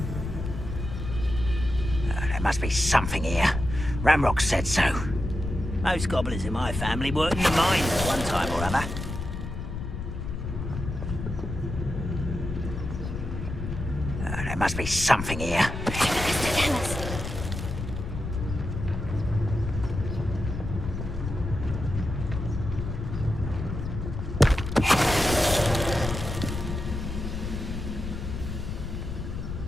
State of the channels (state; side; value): noise; left; rumble, 5 dB below the sound